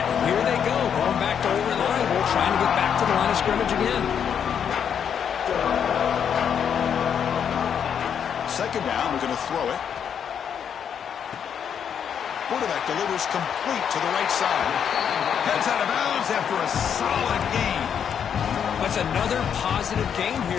here they go, going back to over-reliable, trying to get back to the line of scrimmage again. 2nd down, we're going to throw it. Quarterback delivers complete to the right side. Heads out of bounds after a solid gain. That's another positive game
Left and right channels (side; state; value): right; quieter; 8.0 dB